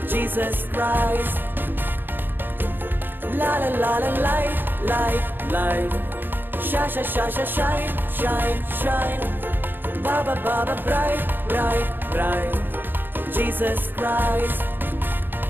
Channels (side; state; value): left; late; 0.096 ms